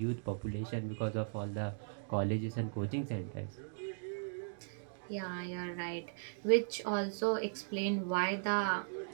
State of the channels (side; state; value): left; silent; digital silence